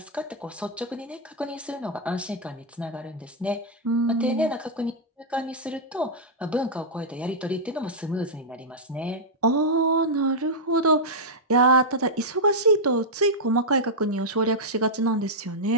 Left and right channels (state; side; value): normal; both; correlation -0.06